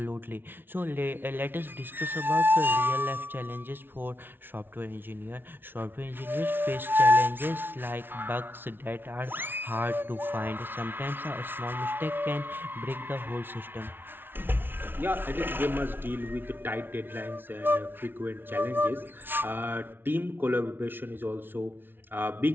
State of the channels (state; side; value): late; left; 0.10 ms